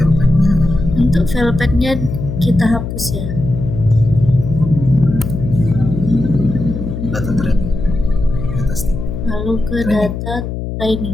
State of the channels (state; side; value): noise; left; hum, 6 dB below the sound